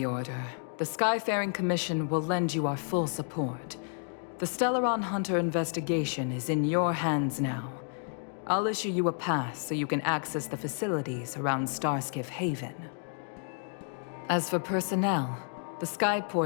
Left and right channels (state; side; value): silent; right; 57 dB below the other